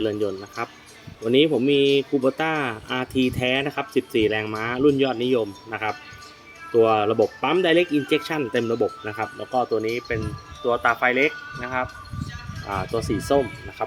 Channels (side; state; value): both; identical; correlation 1.00